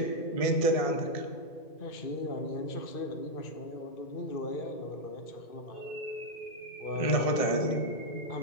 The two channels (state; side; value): late; right; 1.7 ms